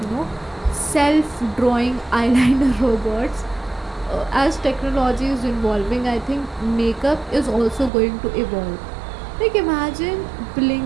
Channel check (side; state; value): left; drops out; at 7.9 s